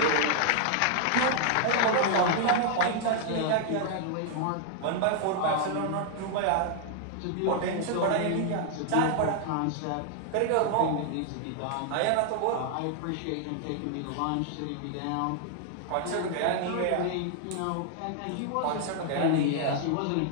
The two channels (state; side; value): different; both; correlation 0.00